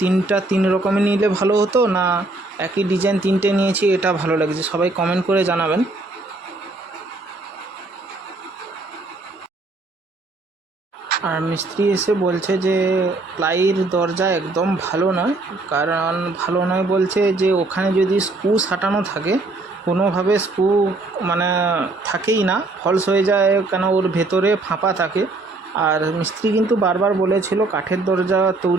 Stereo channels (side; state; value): left; quieter; 3.1 dB